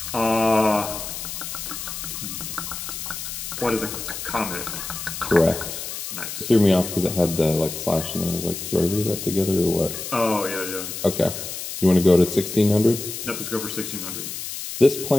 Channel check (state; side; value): noise; left; hiss, 7 dB below the sound